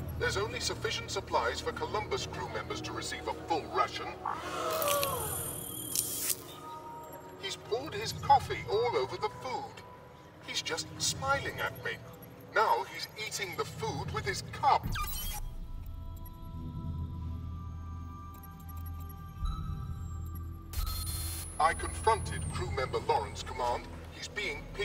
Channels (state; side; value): identical; both; correlation 1.00